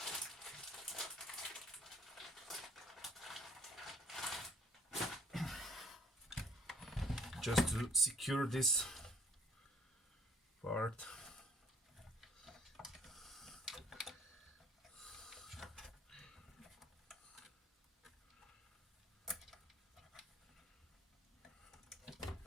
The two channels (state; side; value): normal; both; correlation 0.58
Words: Just to secure this part.